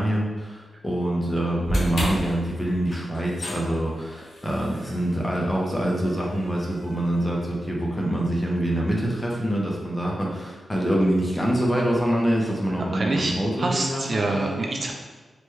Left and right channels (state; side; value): normal; both; correlation 0.91